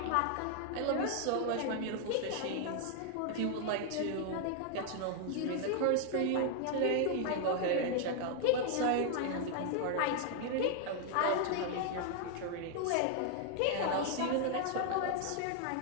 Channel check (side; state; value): both; different; correlation 0.00